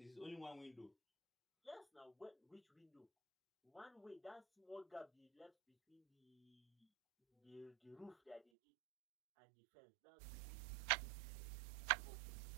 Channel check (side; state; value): left; drops out; at 8.5 s